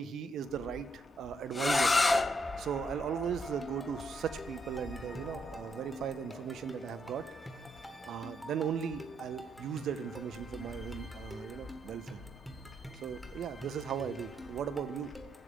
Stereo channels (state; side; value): normal; both; correlation 0.76